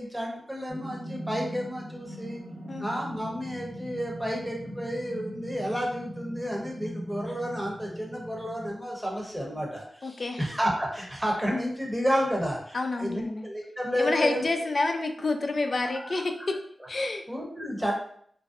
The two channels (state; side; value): normal; both; correlation 0.94